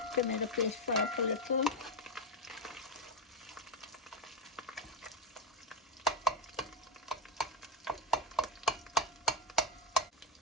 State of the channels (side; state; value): both; normal; correlation 0.09